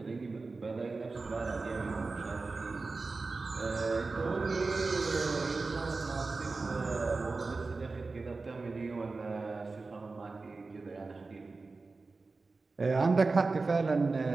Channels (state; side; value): quieter; left; 3.8 dB